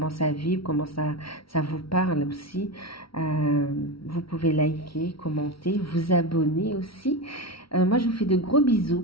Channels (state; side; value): late; right; 0.75 ms